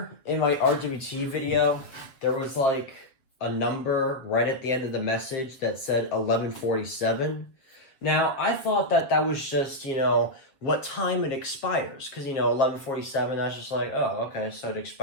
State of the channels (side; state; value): right; late; 7.7 ms